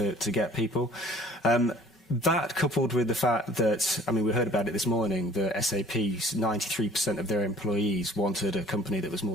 get people. That coupled with the fact that, I mean, we heard about it this morning, the SAP's 93% of their employees wanted a company that was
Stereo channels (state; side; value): normal; both; correlation 0.52